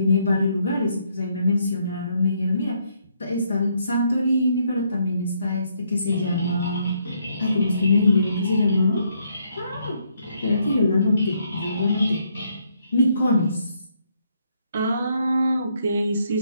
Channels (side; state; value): both; inverted; correlation -0.73